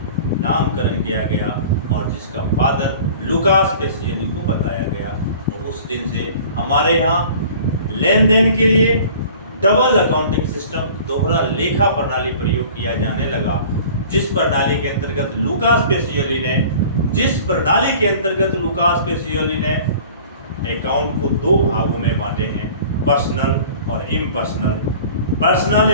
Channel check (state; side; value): inverted; both; correlation -0.45